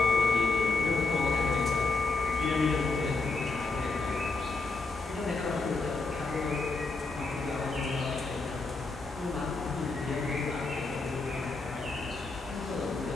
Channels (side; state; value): right; quieter; 3.7 dB